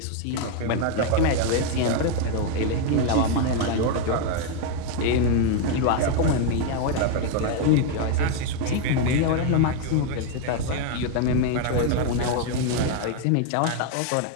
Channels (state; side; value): different; both; correlation 0.01